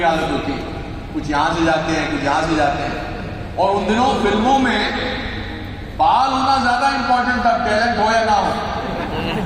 हालत होती है, कुछ यहां से जाते हैं, कुछ यहां से जाते हैं। और उन दिनों फिल्मों में बाल होना ज्यादा इंपॉर्टेंट था, टैलेंट हो या ना हो।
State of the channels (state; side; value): identical; both; correlation 1.00